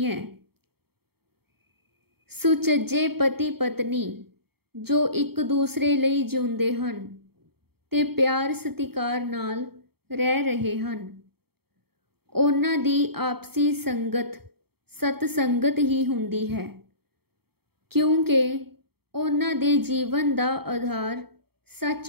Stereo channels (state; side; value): late; left; 0.96 ms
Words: सुचज्जे पति पत्नी जो एक दूसरे लई जिउंदे हन ते प्यार सतिकार नाल रह रहे हैं, उन्हां दी आपसी संगत सतसंगत ही हुंदी है, क्योंकि उन्हां दे जीवन दा आधार